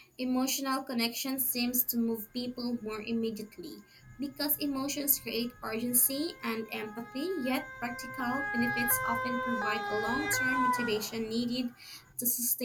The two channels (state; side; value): identical; both; correlation 1.00